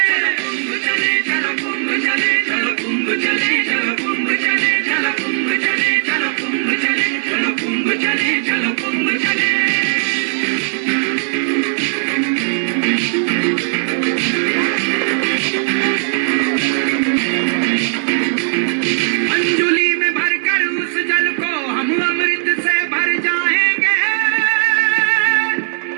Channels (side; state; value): left; silent; digital silence